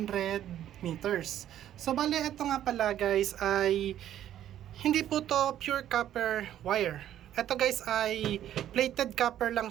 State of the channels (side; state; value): left; quieter; 11.5 dB